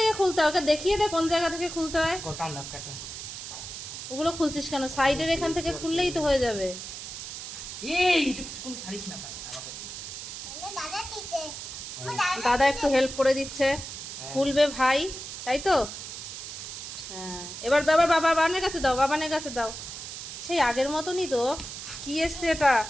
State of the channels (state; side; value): noise; right; hiss, 9 dB below the sound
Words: খুলতে হয়? ওকে দেখিয়ে দে কোন জায়গা থেকে খুলতে হয়। ওগুলো খুলছিস কেন? সাইডের এখান থেকে খুললেই তো হয়ে যাবে। দাদা একটু হেল্প করে দিচ্ছে। খুলবে ভাই, তাই তো? হ্যাঁ, এবার বাবানের কাছে দাও, বাবানের কাছে দাও। সেই আগের মতনই তো। কি এসছে এটা?